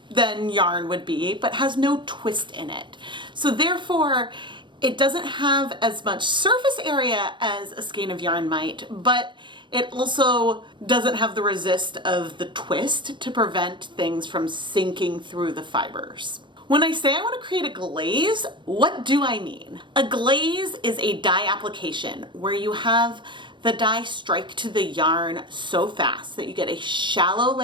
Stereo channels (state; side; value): late; left; 0.23 ms